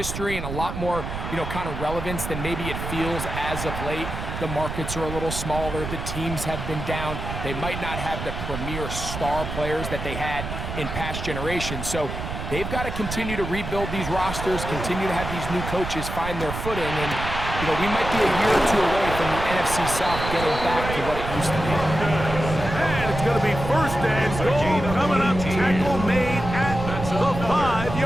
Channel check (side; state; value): right; noise; rumble, 6 dB below the sound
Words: and a lot more, kind of relevance than maybe it feels as of late. The markets are a little smaller. The teams have been down. They might not have the premier star players that they had in past generations. So they've got to continue to rebuild these rosters, continue to have these new coaches find their footing, and we might be a year or 2 away from the NFC South getting back to what it used to be. And it's going to be 1st and goal coming up. Tackle made at the